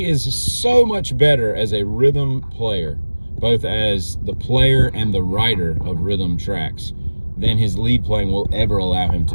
is so much better as a rhythm player, both as the player and the writer of rhythm tracks, than his lead playing will ever allow him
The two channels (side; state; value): both; inverted; correlation -1.00